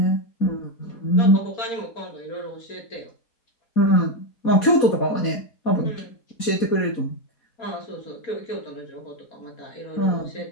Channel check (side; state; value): right; late; 4.3 ms